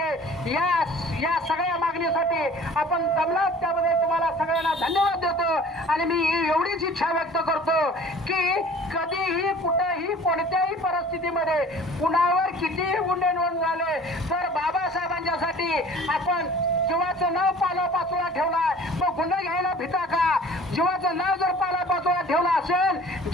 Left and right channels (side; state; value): both; normal; correlation 0.47